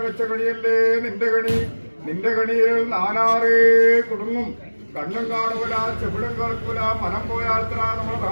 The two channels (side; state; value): both; inverted; correlation -1.00